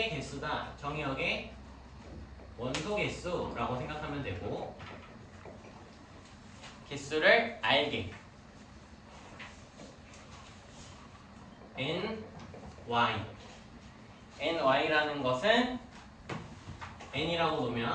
개수다. 정의역의 원소 개수라고 생각하면 되고 개수를 알게 ny라는 것은 n이라고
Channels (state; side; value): identical; both; correlation 1.00